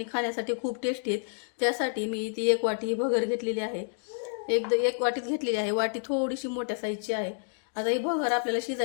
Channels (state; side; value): silent; right; digital silence